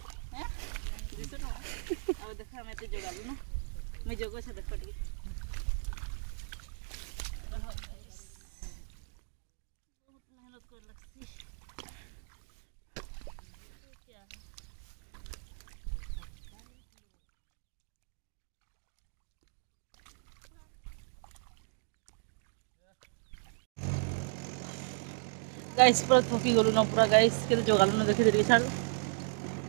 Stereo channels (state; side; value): silent; left; digital silence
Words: हैं 200 टका अब देखो हम एते जोड़ाली ना मैं जोगो छ देख पटकी बहुत मेहनत कर लगती क्या है गाइस पूरा थकी गलु ना पूरा गाइस के जोगालु ना देखि देरी छाड़